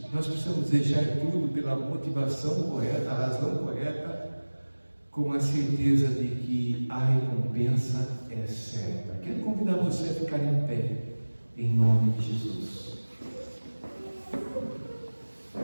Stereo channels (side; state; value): both; inverted; correlation -1.00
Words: nós precisamos deixar tudo pela motivação correta, a razão correta, com a certeza de que a recompensa é certa. Quero convidar você a ficar em pé, em nome de Jesus.